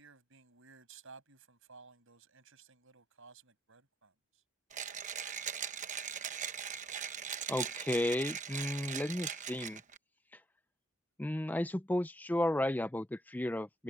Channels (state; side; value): normal; both; correlation 0.73